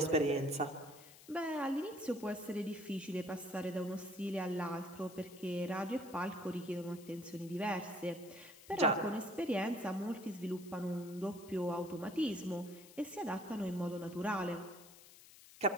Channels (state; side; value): noise; left; hiss, 19 dB below the sound